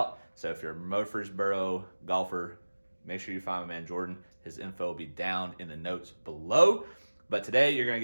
So if you're a Murfreesboro golfer, make sure you find my man Jordan. His info will be down in the notes below. But today you're going to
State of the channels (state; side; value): inverted; both; correlation -1.00